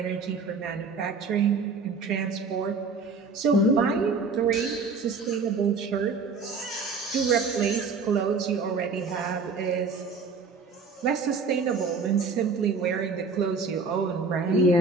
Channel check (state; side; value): quieter; left; 4.4 dB